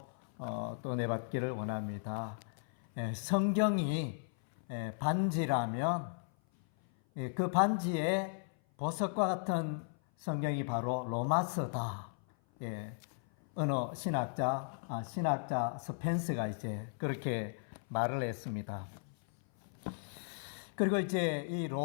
또 은혜 받기를 원합니다. 성경이 반지라면 그 반지에 보석과 같은 성경이 바로 로마서다. 어느 신학자 스펜스가 이제 그렇게 말을 했습니다. 그리고 이제 이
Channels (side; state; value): right; silent; 54 dB below the other